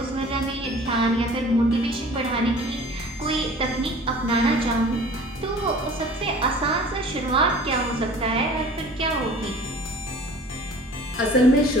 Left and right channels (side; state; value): both; normal; correlation 0.46